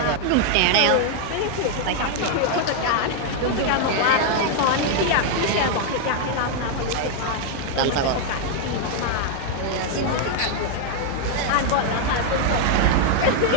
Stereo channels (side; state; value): both; different; correlation 0.00